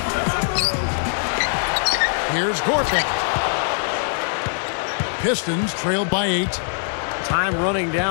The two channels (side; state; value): right; silent; digital silence